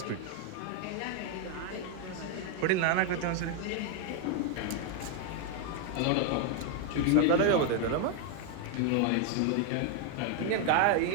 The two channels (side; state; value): both; different; correlation 0.00